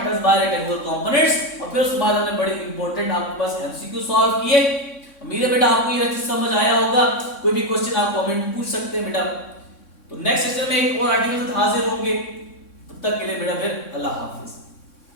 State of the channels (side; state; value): right; late; 3.6 ms